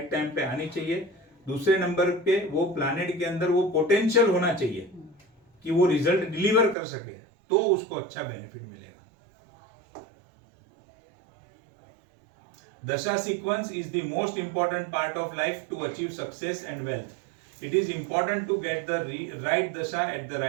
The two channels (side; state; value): left; drops out; at 6.8 s